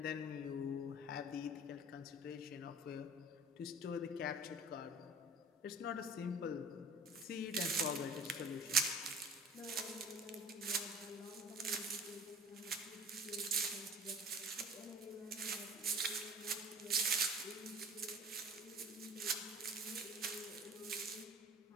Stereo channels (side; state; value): both; normal; correlation 0.43